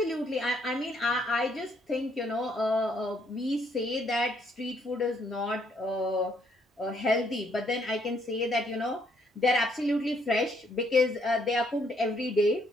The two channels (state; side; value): normal; both; correlation 0.69